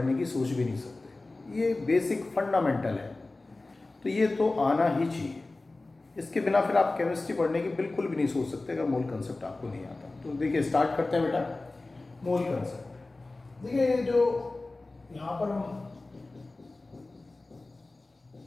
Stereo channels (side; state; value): right; quieter; 3.2 dB